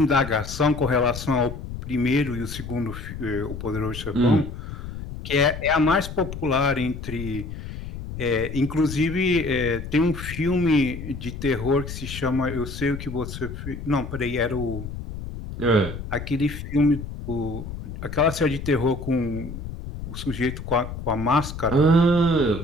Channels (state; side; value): noise; left; rumble, 9 dB below the sound